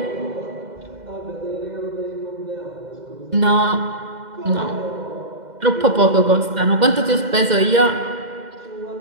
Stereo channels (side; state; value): left; late; 2.1 ms